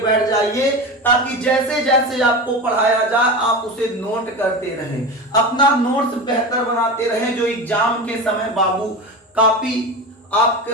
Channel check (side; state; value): both; normal; correlation 0.25